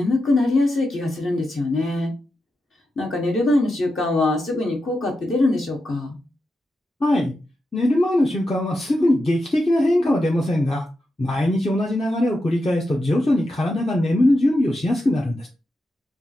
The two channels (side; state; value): both; normal; correlation 0.88